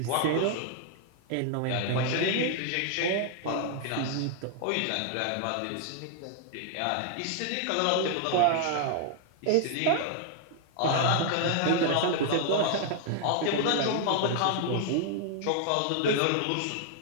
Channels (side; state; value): both; different; correlation 0.00